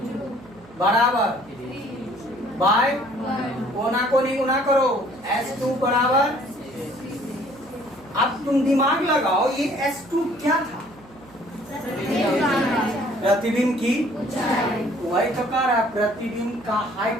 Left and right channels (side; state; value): right; noise; hum, 24 dB below the sound